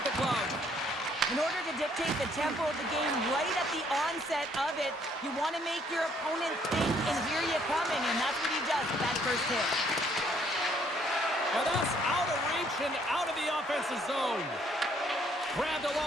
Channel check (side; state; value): both; normal; correlation 0.65